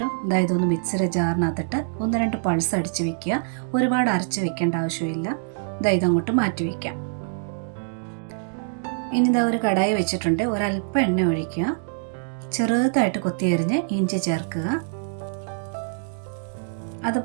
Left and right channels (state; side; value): silent; left; digital silence